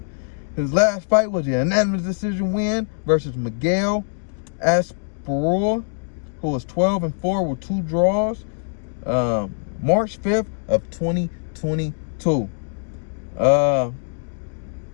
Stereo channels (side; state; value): right; silent; digital silence